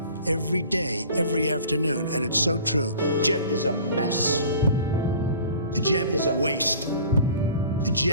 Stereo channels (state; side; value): inverted; both; correlation -0.46